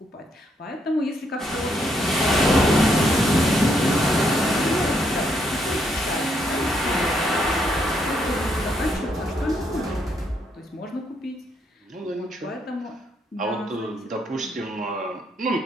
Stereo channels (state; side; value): normal; both; correlation 0.75